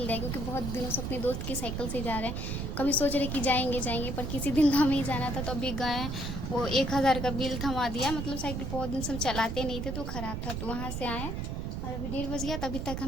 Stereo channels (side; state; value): right; noise; rumble, 3 dB below the sound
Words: ले, क्योंकि बहुत दिनों से अपने दोस्त की साइकिल से जा रहे हैं। कभी सोच रहे कि जाएंगे पर किसी दिन तो हमें ही जाना था। तो अभी गए, वो 1000 का बिल थमा दिया। मतलब साइकिल बहुत दिन से हम चलाते नहीं थे तो ख़राब था। तो वहाँ से आए और अभी 1:30 बज गया। तभी तक